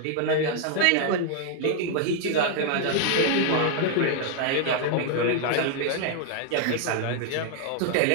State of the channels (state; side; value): different; both; correlation 0.00